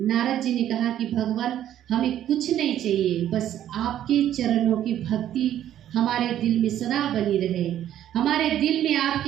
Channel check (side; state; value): left; quieter; 11.4 dB